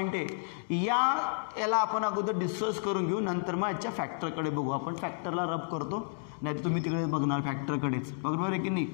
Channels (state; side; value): silent; right; digital silence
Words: आहे. याला आपण अगोदर डिस्कस करून घेऊ, नंतर मग याच्या फॅक्टरकडे बघू. आपण फॅक्टरला रब करतो, नाही तर तुम्ही तिकडे बघणार फॅक्टरकडेच, बरोबर आहे की नाही.